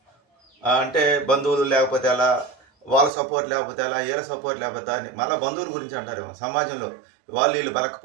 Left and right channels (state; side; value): drops out; left; at 3.1 s